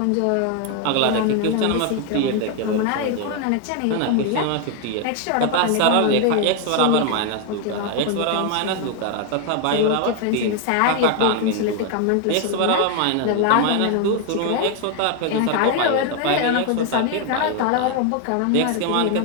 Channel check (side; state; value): both; different; correlation 0.01